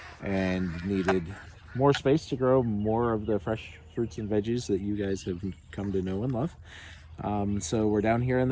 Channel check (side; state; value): both; identical; correlation 1.00